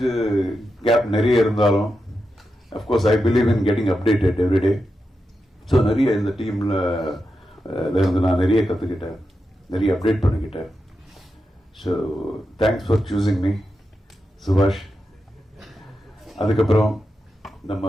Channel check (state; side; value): normal; both; correlation 0.88